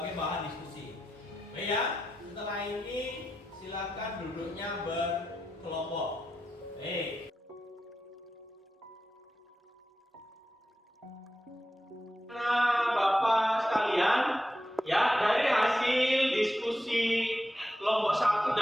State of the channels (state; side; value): normal; both; correlation 0.89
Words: bahan diskusi. Oke ya. Setelah ini silakan duduknya berkelompok. Nah, Bapak sekalian, ya, dari hasil diskusi kelompok 1